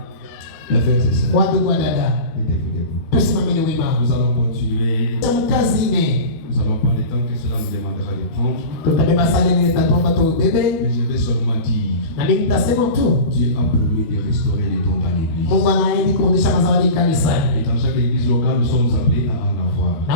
Les frères et sœurs, Watu kwa dada. mettez-vous debout. Tusimameni wima. Nous allons continuer. Mkazi ne. Nous allons prendre le temps que cela nous demandera de prendre. Tutabeba sala ile tatuomba tu bebe. Mais je vais seulement dire, Na mimi nitasema tu. Dieu a promis de restaurer les dons dans l'église. Mungu anaahidi kurudisha mazawadi kanisani. Et dans chaque église locale, nous sommes appelés à en avoir.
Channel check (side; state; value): right; late; 13 ms